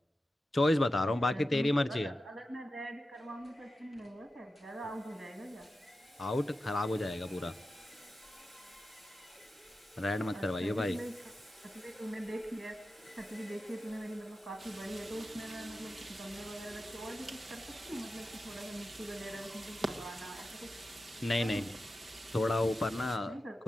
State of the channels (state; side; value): normal; both; correlation 0.92